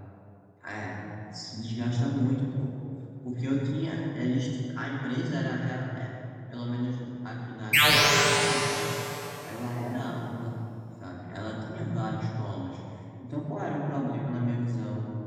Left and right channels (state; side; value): identical; both; correlation 1.00